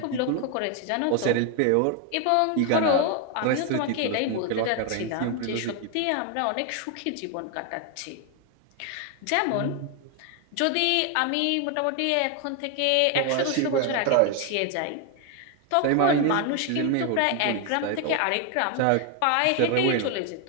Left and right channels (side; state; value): both; different; correlation 0.01